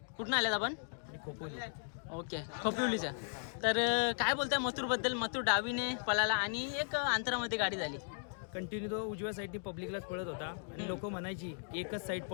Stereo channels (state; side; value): silent; right; digital silence